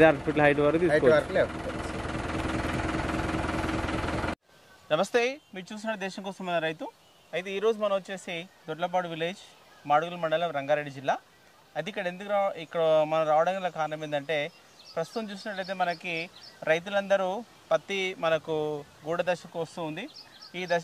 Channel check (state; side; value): identical; both; correlation 1.00